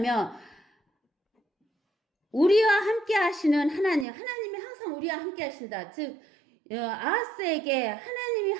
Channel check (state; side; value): drops out; left; at 4.0 s